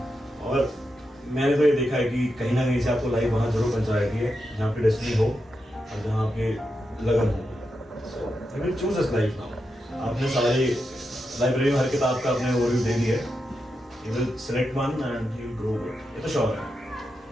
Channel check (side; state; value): both; normal; correlation 0.87